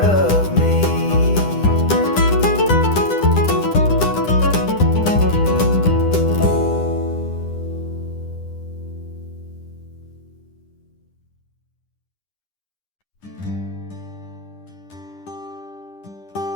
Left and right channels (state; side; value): late; right; 10 ms